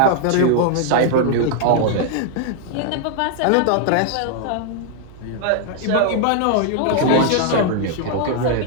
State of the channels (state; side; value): different; both; correlation 0.00